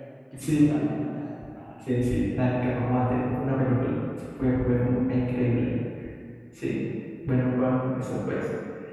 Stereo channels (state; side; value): identical; both; correlation 1.00